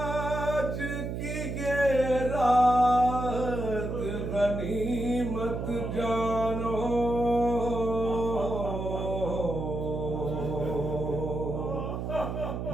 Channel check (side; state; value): right; noise; hum, 4 dB below the sound